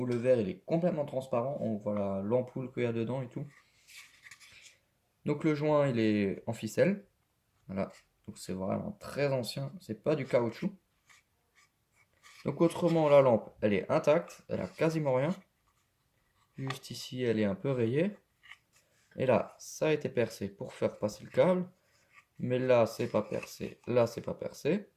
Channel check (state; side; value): identical; both; correlation 1.00